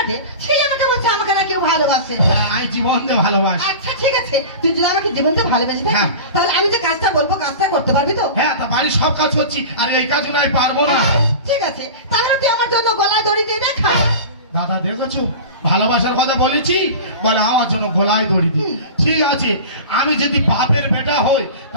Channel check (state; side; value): inverted; both; correlation -0.33